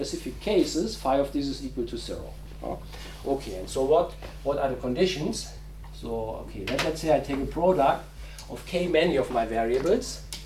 cases, phi of this is equal to 0. Okay, and so what are the conditions? So, okay, let's say I take a product of k many of my variables,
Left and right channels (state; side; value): identical; both; correlation 1.00